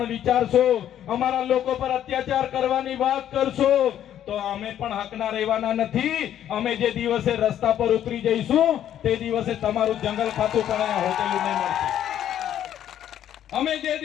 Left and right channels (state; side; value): quieter; right; 10.8 dB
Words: વિચારશો, અમારા લોકો પર અત્યાચાર કરવાની વાત કરશો તો અમે પણ હકના રહેવાના નથી. અમે જે દિવસે રસ્તા પર ઉતરી જઈશું તે દિવસે તમારું જંગલ ખાતું પણ અહીંયા હોટેલું નહીં મળશે. અમે જે